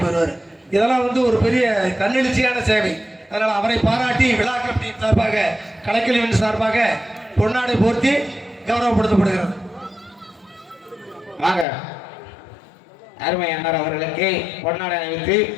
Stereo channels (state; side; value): drops out; right; at 11.7 s